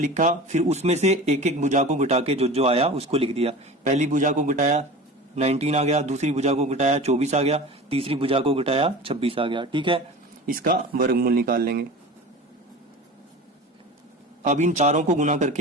फिर उसमें से एक एक भुजा को घटा के जो जो आया उसको लिख दिया। पहली भुजा को घटाया 19 आ गया, दूसरी भुजा को घटाया 24 आ गया, तीसरी भुजा को घटाया 26 आ गया। ठीक है, इसका वर्गमूल निकाल लेंगे। अब इन चारों को गुना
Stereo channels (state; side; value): normal; both; correlation 0.35